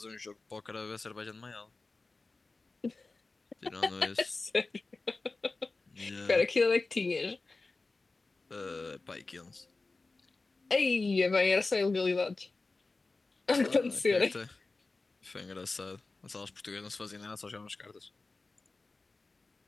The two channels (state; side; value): quieter; right; 3.6 dB